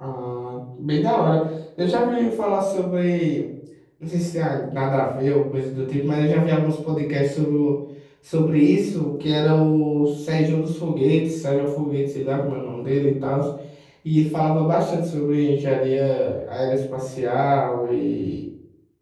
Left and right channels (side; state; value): both; identical; correlation 1.00